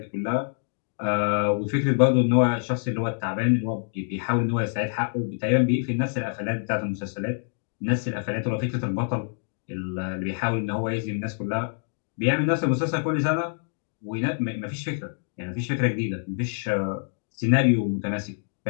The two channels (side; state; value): right; silent; digital silence